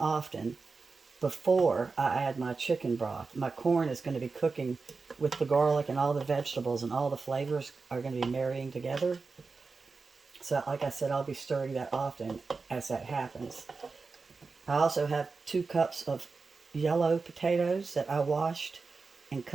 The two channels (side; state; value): left; quieter; 4.3 dB